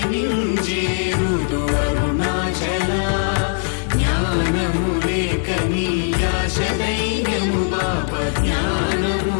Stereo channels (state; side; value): silent; right; 59 dB below the other